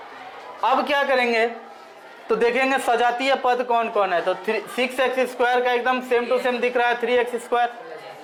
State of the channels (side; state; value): both; identical; correlation 1.00